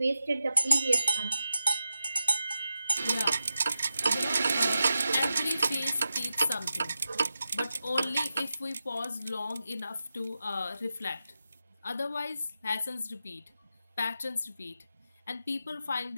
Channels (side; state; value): both; inverted; correlation -0.91